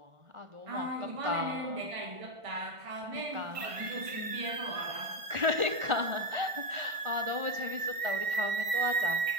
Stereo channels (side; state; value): left; late; 1.5 ms